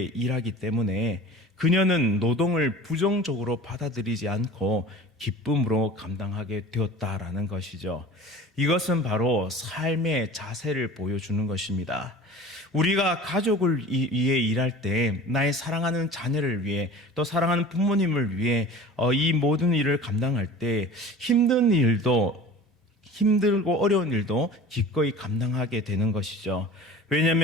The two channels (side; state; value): both; normal; correlation 0.40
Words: 일하기 때문에 그녀는 노동을 부정적으로 받아들이지 않고 기쁨으로 감당하게 되었다라는 것이죠. 이것은 바로 삶의 자세를 보여주는 것입니다. 우리가 가족을 위해 일할 때 나의 사랑하는 자녀를 위해 또 사랑하는 부모님을 위해 이 모든 일을 감당할 때 힘들고 어려운 일도 기꺼이 감당하게 되는 것이죠.